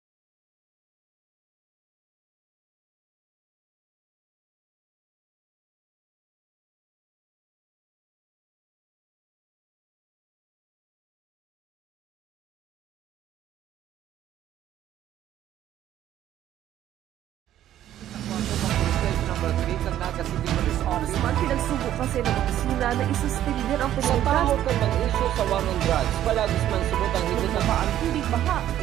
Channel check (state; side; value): quieter; left; 12.0 dB